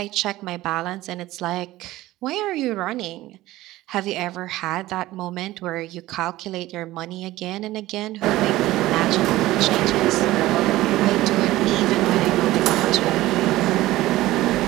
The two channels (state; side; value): quieter; left; 16.8 dB